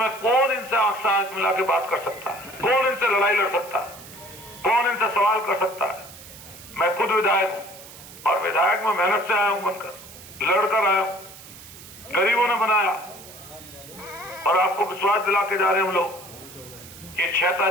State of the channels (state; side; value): noise; right; hiss, 17 dB below the sound